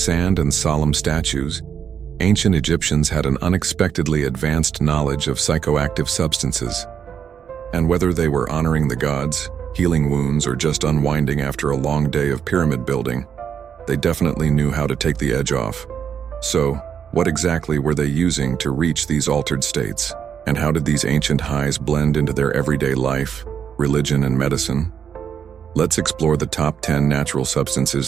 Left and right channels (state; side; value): quieter; left; 7.9 dB